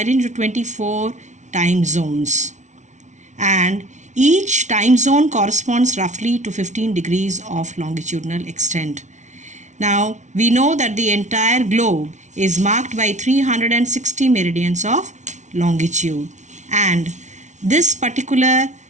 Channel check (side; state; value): left; late; 0.35 ms